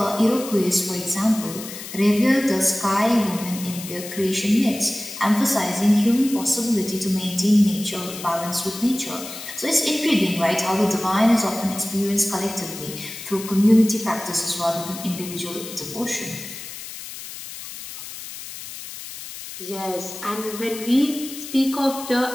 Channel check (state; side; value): noise; left; hiss, 11 dB below the sound